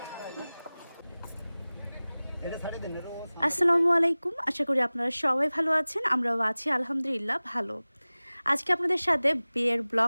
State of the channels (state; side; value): inverted; both; correlation -0.98